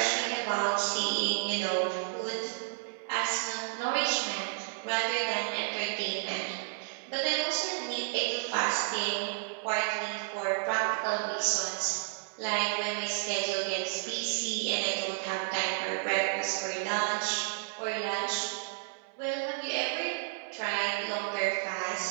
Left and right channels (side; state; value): left; silent; 57 dB below the other